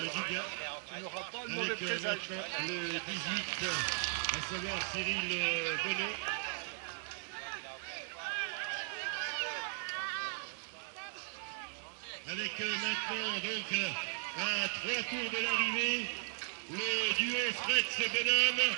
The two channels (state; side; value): silent; left; 53 dB below the other